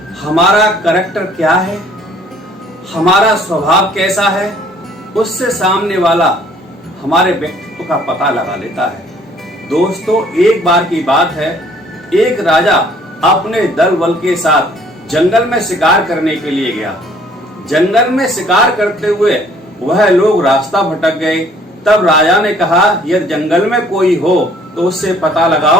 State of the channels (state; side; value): normal; both; correlation 0.58